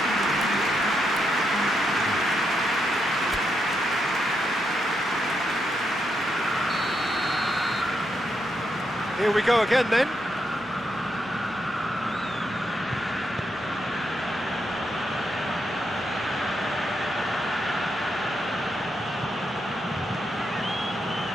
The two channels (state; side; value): normal; both; correlation 0.81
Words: Here we go again then.